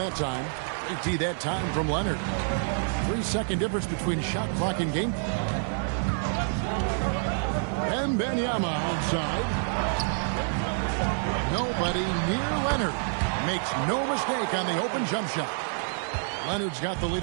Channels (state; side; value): silent; left; 60 dB below the other